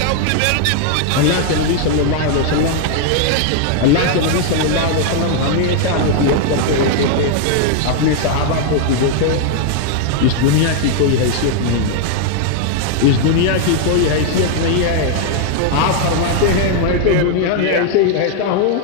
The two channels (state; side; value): different; both; correlation 0.00